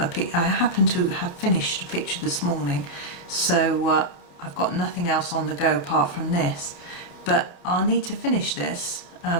happen to have finished a picture this morning, so I've got nothing else on the go apart from this, but I'll need to finish this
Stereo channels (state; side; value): late; right; 29 ms